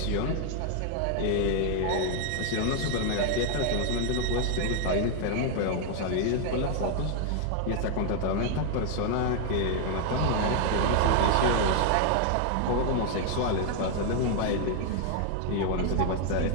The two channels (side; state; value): both; different; correlation 0.00